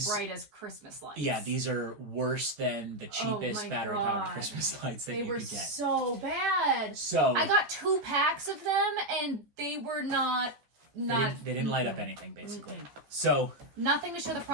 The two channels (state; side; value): late; left; 14 ms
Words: bright as Christmas lights. Yeah, these are worse than the cheapest battery-powered Christmas lights that you could get. They were so bad. So I got 2 packs of them, and they were not. They didn't light up anything, basically. So nothing to show the